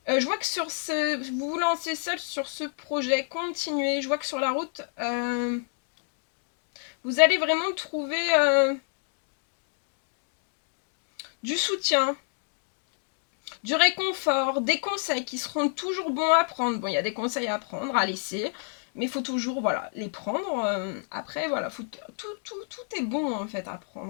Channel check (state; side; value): silent; right; 58 dB below the other